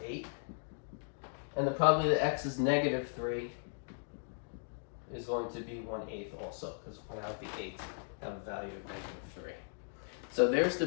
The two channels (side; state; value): right; silent; digital silence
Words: 8. And the probability that x is -3 is going to be 1/8 also, because 1 out of the 8 have a value of -3. So there's the